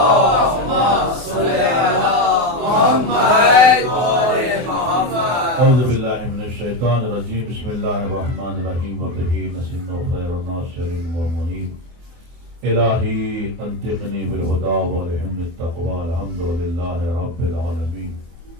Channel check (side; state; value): left; late; 24 ms